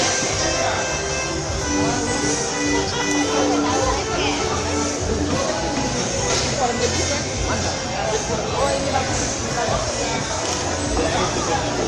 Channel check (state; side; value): identical; both; correlation 1.00